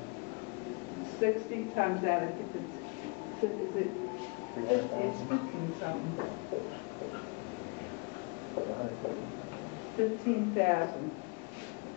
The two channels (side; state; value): right; quieter; 33.2 dB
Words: 60 times that, I think it's, is it? 300,000. It's 15 something. 150. 15,000